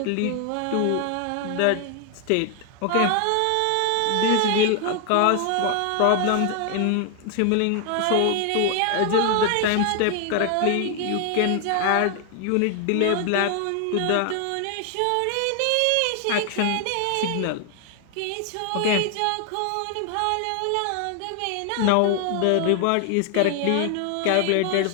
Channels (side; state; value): both; different; correlation 0.00